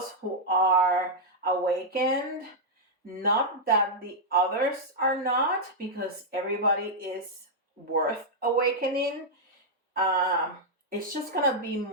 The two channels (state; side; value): normal; both; correlation -0.05